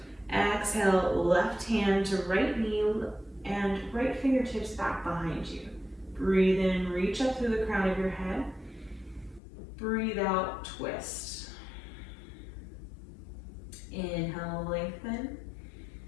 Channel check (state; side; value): drops out; right; at 9.4 s